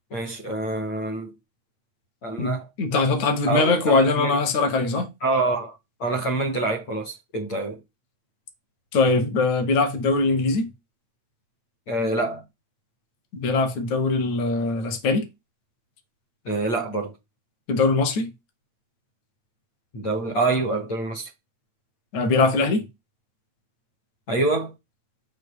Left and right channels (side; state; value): right; late; 9.3 ms